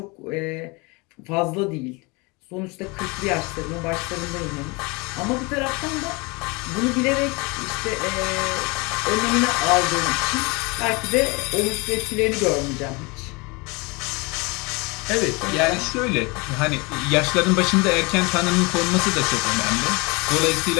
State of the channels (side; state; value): right; quieter; 27.5 dB